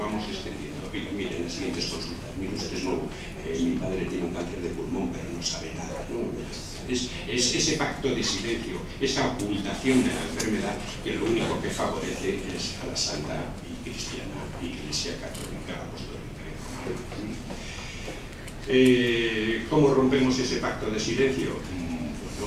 extendiendo. Oiga, miren, las siguientes consultas, mire usted es nuevo, mi padre tiene un cáncer de pulmón, pero no sabe nada, ¿no? Es ese pacto de silencio, esa ocultación de la enfermedad, que lo único que favorece es a la santa y cristiana Iglesia Católica Apostólica y Romana. ¿Cómo rompemos ese pacto de silencio?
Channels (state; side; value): identical; both; correlation 1.00